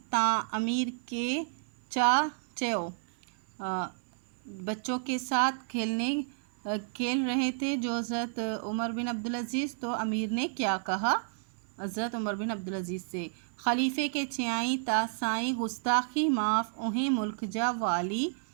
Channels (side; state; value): left; silent; 56 dB below the other